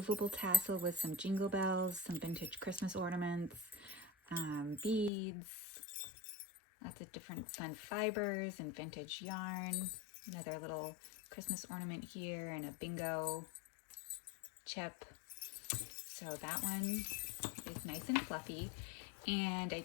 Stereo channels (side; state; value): right; drops out; at 5.1 s